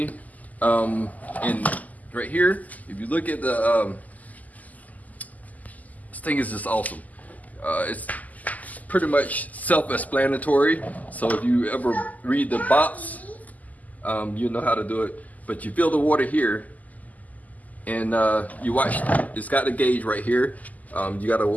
And right here, if you look at the, this thing is just awesome. It's pretty much self-explanatory. So if you ever read the box, you know how to do it. But you fill the water here, and you watch. It's got the gauge right here. You gotta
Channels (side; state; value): right; late; 0.078 ms